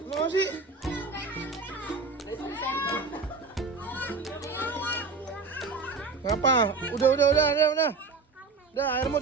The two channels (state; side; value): quieter; left; 4.3 dB